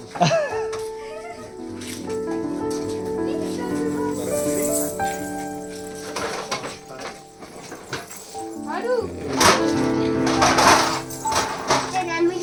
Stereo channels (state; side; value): identical; both; correlation 1.00